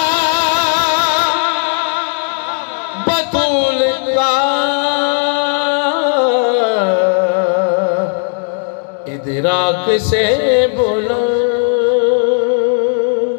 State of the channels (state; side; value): silent; right; 60 dB below the other